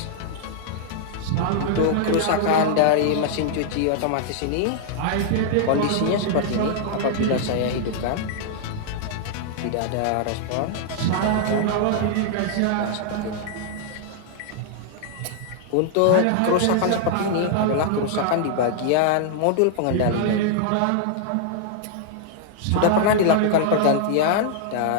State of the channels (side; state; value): both; different; correlation -0.01